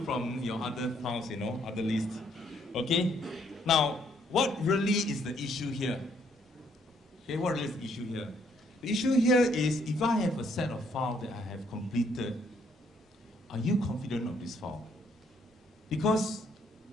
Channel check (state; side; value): normal; both; correlation 0.69